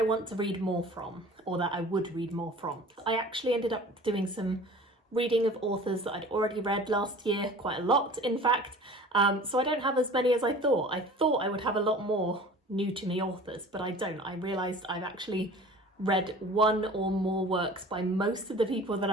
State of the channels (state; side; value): normal; both; correlation 0.43